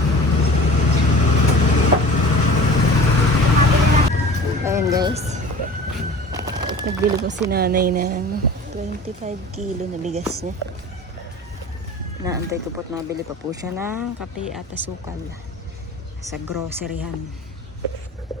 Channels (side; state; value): both; normal; correlation 0.41